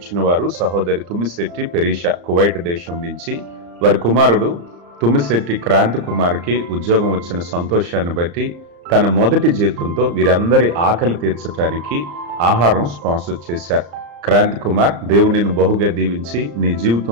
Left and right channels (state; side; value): late; left; 35 ms